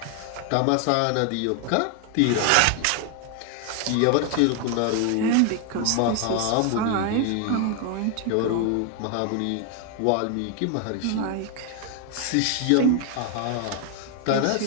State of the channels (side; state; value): both; different; correlation 0.01